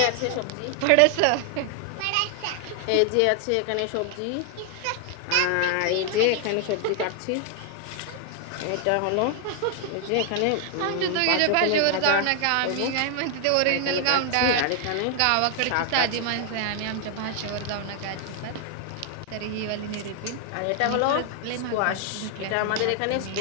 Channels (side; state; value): both; different; correlation 0.00